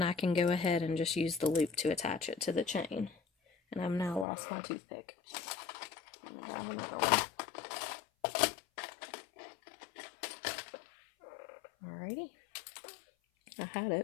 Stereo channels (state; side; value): drops out; right; at 4.2 s